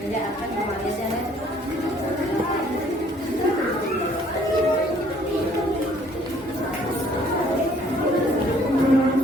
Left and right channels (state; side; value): normal; both; correlation 0.60